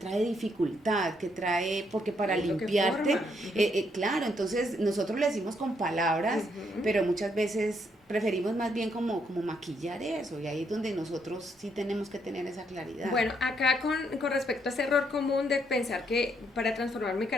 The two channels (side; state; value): both; normal; correlation 0.74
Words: dificultad, porque para limpiarte, claro, entonces nosotros le decimos con palabras, pero muchas veces preferimos más bien como maquillar eso, y ahí es donde nosotros sí tenemos que tener esa claridad. Bueno, acá con respecto a ese error común de pensar que para transformar mi